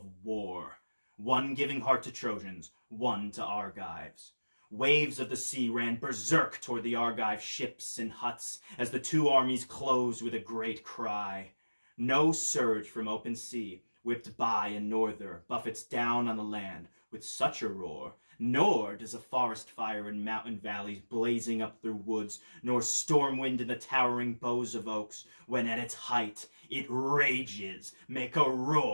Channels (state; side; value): inverted; both; correlation -1.00